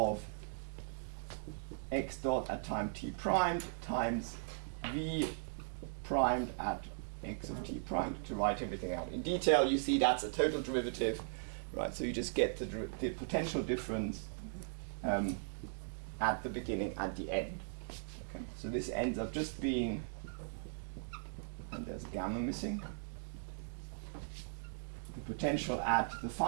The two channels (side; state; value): left; silent; digital silence